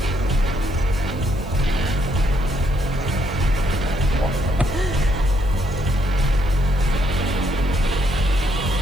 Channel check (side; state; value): left; noise; hiss, 26 dB below the sound